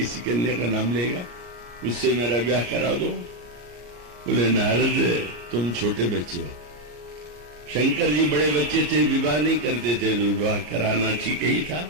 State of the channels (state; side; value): late; left; 34 ms